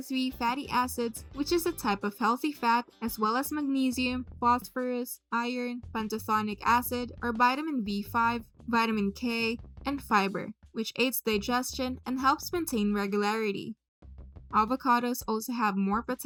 fatty acids, which is a type of healthy fat, as well as magnesium, phosphorus, iron, pantothenic acid, or vitamin B5, vitamin K, and fiber, which aids digestion and helps maintain regularity. Avocados also have more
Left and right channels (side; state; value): both; identical; correlation 1.00